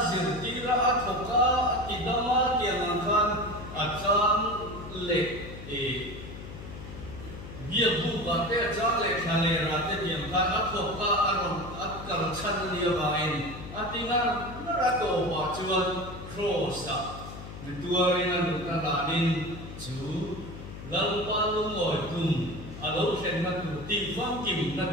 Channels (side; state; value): left; noise; hum, 12 dB below the sound